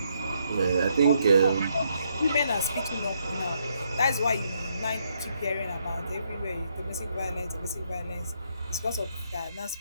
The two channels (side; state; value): both; inverted; correlation -0.75